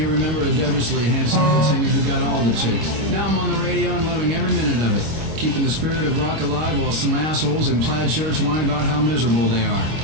remember a devilishly handsome lead singer who got all the chicks. Now I'm on the radio and loving every minute of it, keeping the spirit of rock alive while some assholes in plaid shirts whine about how miserable they are.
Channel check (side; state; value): left; late; 25 ms